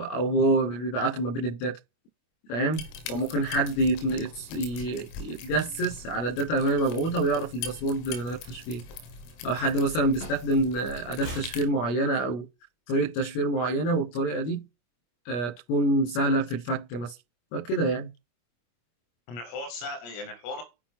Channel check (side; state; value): right; late; 25 ms